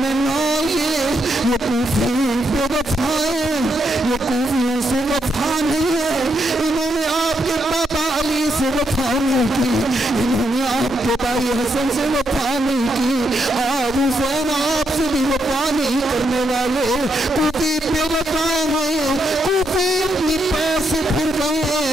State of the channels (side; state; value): both; normal; correlation 0.79